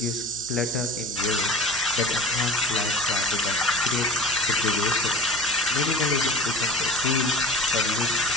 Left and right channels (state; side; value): noise; left; hum, 27 dB below the sound